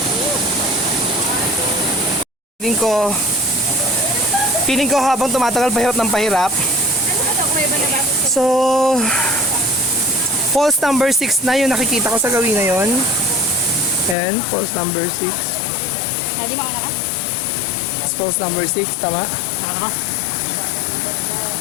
Feeling ko habang tumatagal pahirap ng pahirap. So, falls number 6 na yung nakikita ko sa gawin na yun. Ayan, falls number 6. Daddy, mauna ka? Falls number 6, tama?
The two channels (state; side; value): drops out; right; at 14.2 s